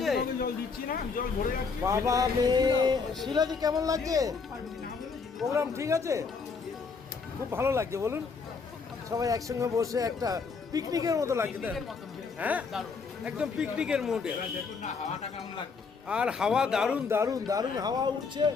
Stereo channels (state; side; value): quieter; right; 5.0 dB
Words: বাবা মেয়ে শিলাদি কেমন লাগছে? প্রোগ্রাম ঠিক আছে? খুব ভালো লাগছে বলুন। সবাই একসঙ্গে বসে একটা পিকনিকের মতো লাগছে, তাই না? হ্যাঁ, একদম পিকনিকের মোডে। আর হাওয়া দারুণ দারুণ দারুণ হাওয়া উঠছে